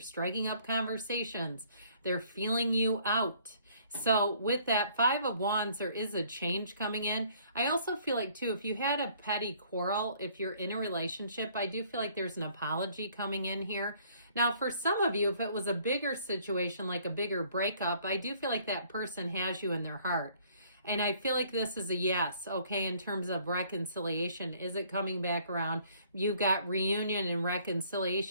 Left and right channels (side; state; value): both; inverted; correlation -0.60